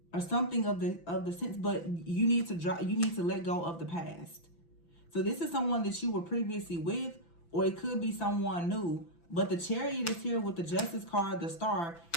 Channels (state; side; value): late; right; 5.9 ms